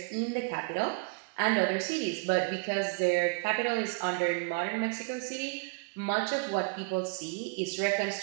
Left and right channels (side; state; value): left; quieter; 33.8 dB